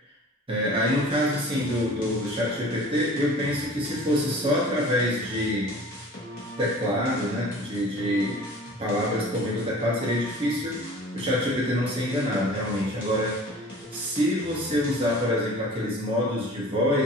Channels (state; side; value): normal; both; correlation 0.44